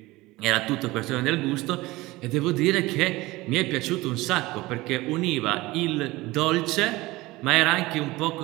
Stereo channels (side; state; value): left; quieter; 20.0 dB